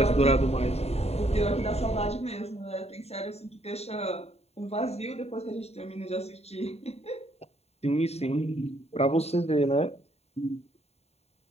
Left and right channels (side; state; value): right; late; 0.30 ms